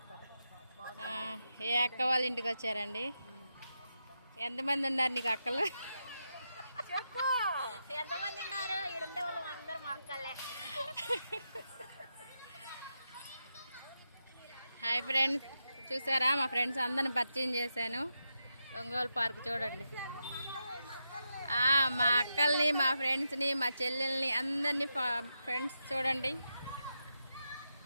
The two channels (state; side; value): inverted; both; correlation -0.86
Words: ఏ అక్క వాళ్ళ ఇంటికి వచ్చారండి? ఎంతమంది ఉన్నారు నీకు అక్కలు? చెప్పు, ఎంతమంది ఉన్నారు? ఇక్కడ వాళ్ళు అందరూ మా అక్కలే. హాయ్ ఫ్రెండ్స్, చూసారా మా ఫ్రెండ్స్ అందరిని పరిచయం చేశాను. ఒంగోలు పార్క్ చూడండి. మా అక్కల్ని మా ఫ్రెండ్స్ని మా చెల్లెల్ని అందరినీ ఫ్రెండ్స్ చూడండి.